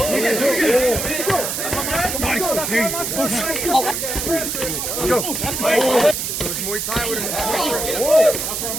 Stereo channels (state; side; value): noise; right; hiss, 2 dB below the sound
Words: Go. It was Muay Thai with him.